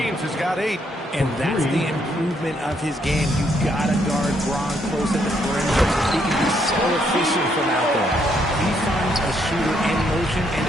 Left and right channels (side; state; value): both; normal; correlation 0.73